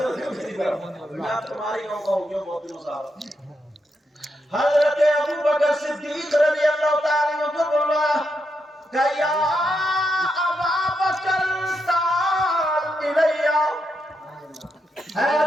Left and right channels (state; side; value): normal; both; correlation 0.82